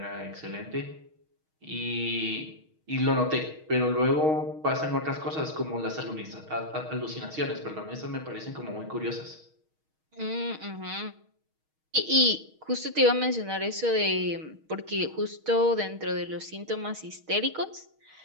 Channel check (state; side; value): late; left; 6.4 ms